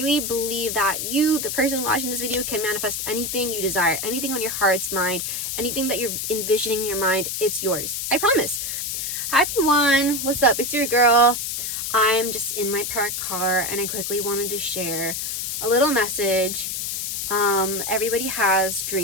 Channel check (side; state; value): left; noise; hiss, 3 dB below the sound